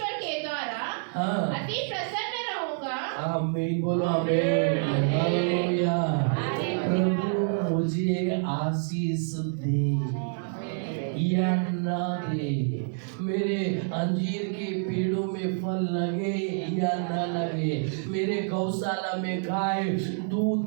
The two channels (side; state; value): left; silent; 60 dB below the other